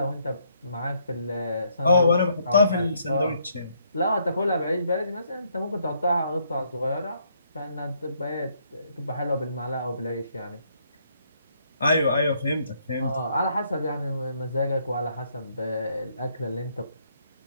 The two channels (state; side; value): inverted; both; correlation -0.71